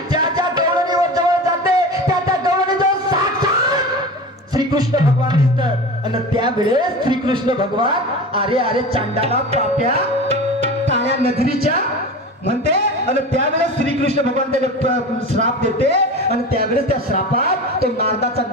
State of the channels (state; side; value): normal; both; correlation 0.31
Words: ज्या गवळणीवर जवळ जाते त्या गवळणीजवळ साक्षात श्रीकृष्ण भगवान दिसतात. आणि त्यावेळेस श्रीकृष्ण भगवान अरे चांडाला पाप्या काळ्या नजरीच्या म्हणते. आणि त्यावेळेस श्रीकृष्ण भगवान त्याला श्राप देते. आणि त्यावेळेस त्या श्रापात तो नारदाचा